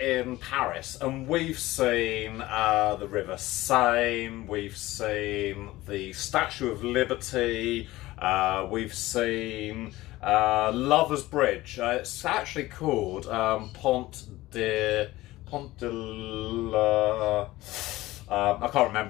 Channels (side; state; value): right; quieter; 17.8 dB